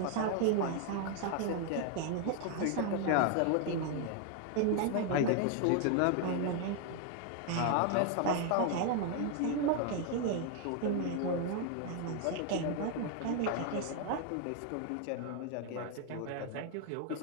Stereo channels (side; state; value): both; different; correlation 0.00